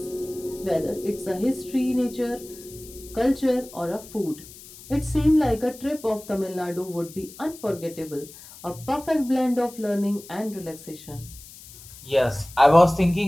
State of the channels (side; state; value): left; noise; hiss, 18 dB below the sound